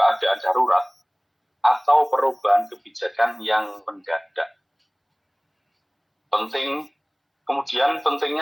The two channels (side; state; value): both; identical; correlation 1.00